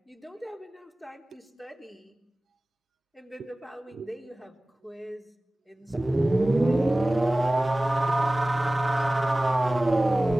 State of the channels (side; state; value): both; normal; correlation 0.98